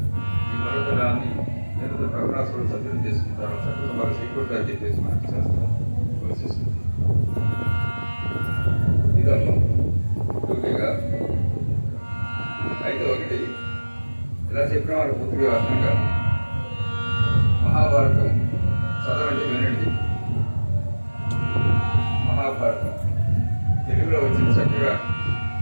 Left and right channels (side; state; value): both; inverted; correlation -1.00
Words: ఈ పర్వతరాన్ని ప్రభునాథుడు సత్యం చేసుకుంటారు. సత్యం వారు సీకూర్గా చెప్పేసి మనకు చేస్తారు. ఇదమ్మా టూకీగా అయితే ఒకటి ఇలా చెప్పిన వారు పూర్తిగా అర్థంగా మహాభారతం చదవండి, వినండి. మహాభారతం తెలుగులో వచ్చింది చక్కగా.